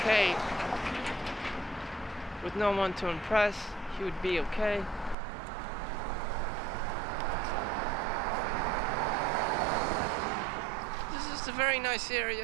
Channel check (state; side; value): drops out; left; at 5.2 s